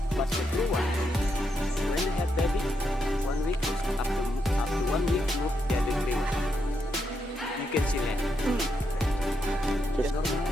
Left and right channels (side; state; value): both; normal; correlation 0.81